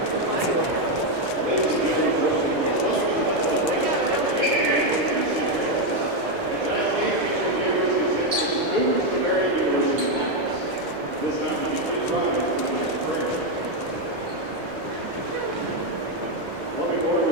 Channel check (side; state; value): both; normal; correlation 0.04